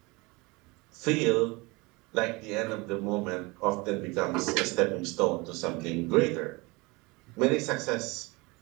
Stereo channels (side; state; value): left; quieter; 25.1 dB